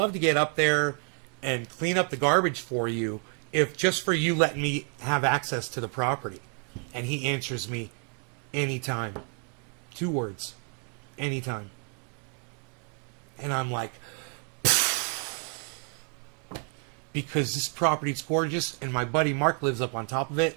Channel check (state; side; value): quieter; left; 37.9 dB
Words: to get up there and clean up the garbage for you, if just for you letting me have access to the property. And he answers me, anytime. 2 words. Anytime. And I'm like, because this property's gorgeous, and my buddy Mark lives up on top of it.